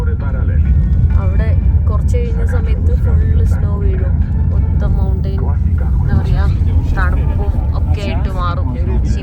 അവിടെ കുറച്ച് കഴിഞ്ഞ സമയത്ത് ഫുള്ള് സ്നോ വീഴും. മൊത്തം മൗണ്ടെയിൻ എന്താ പറയുക തണുപ്പും ഒക്കെ ആയിട്ട് മാറും. പക്ഷെ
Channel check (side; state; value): both; identical; correlation 1.00